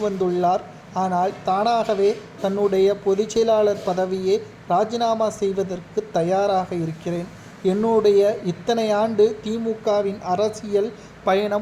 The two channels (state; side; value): identical; both; correlation 1.00